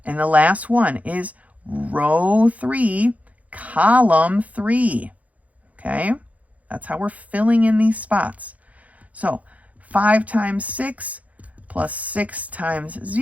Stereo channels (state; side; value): late; left; 0.070 ms